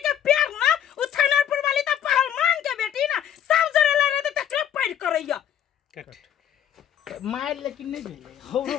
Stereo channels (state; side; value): quieter; right; 9.9 dB